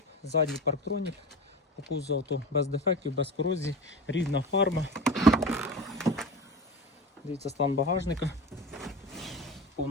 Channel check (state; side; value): normal; both; correlation 0.30